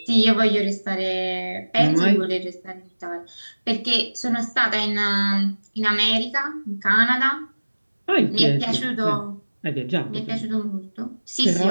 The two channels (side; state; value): both; inverted; correlation -1.00